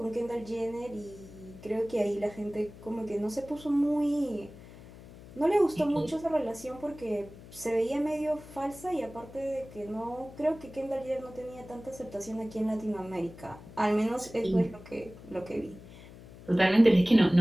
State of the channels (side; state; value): left; noise; hum, 18 dB below the sound